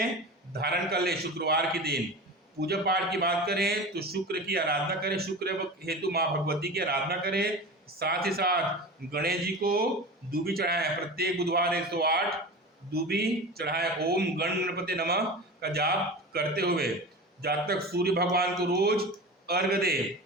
धारण कर ले शुक्रवार के दिन। पूजा पाठ की बात करें तो शुक्र की आराधना करें, शुक्र हेतु माँ भगवती की आराधना करें। साथ ही साथ गणेश जी को दूबी चढ़ाएं, प्रत्येक बुधवार 108 दूबी चढ़ाएं। ओम गणपति नमः का जाप करते हुए जातक सूर्य भगवान को रोज अर्घ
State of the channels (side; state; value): both; normal; correlation 0.31